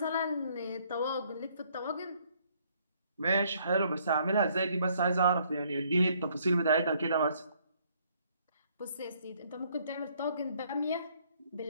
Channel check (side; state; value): both; inverted; correlation -0.66